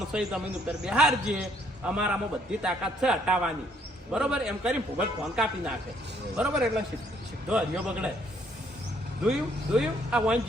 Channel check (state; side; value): normal; both; correlation 0.67